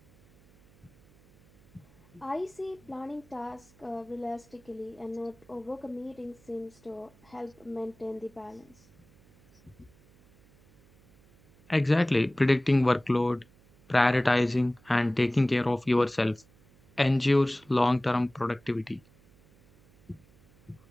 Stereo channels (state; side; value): noise; right; hum, 29 dB below the sound